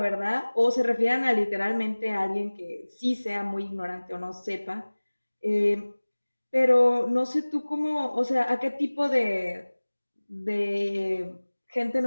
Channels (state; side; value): inverted; both; correlation -1.00